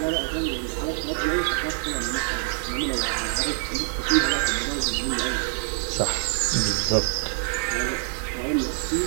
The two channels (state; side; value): silent; left; 61 dB below the other